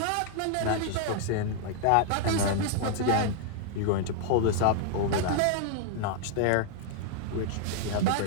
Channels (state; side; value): different; both; correlation 0.00